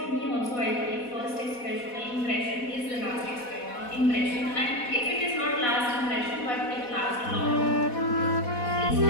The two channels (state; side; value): late; right; 4.1 ms